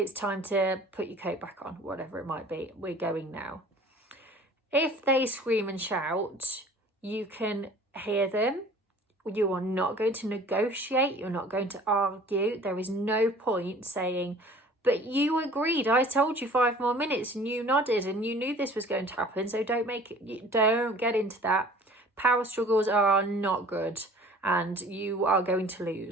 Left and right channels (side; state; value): both; normal; correlation 0.48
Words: time to put your coat back on, whatever it might be. We're going now. If they scream and shout, you can hear them. You are not going to negotiate. You're not going to argue. There is no point saying, but you agreed. I told you 5 more minutes and you nodded and you knew this was going to happen. So don't get into that. Power struggles are not good and you are going to